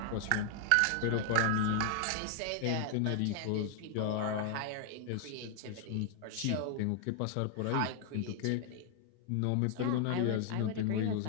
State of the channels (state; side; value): different; both; correlation 0.00